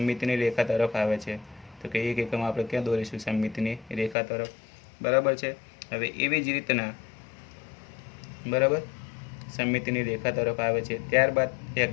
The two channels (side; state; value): right; drops out; at 4.2 s